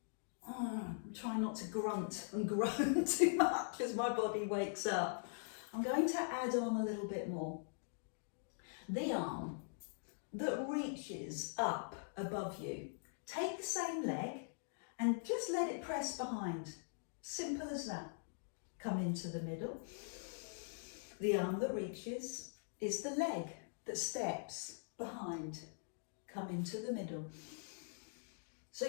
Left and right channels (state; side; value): silent; right; digital silence